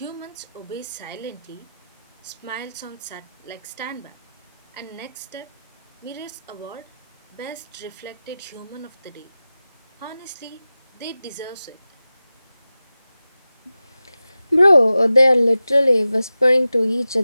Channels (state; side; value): inverted; both; correlation -0.94